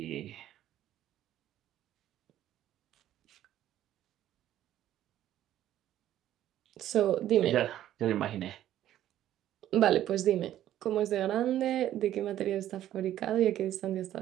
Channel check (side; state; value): left; quieter; 12.4 dB